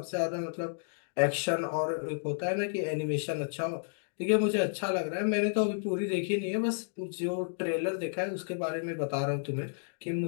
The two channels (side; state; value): right; silent; digital silence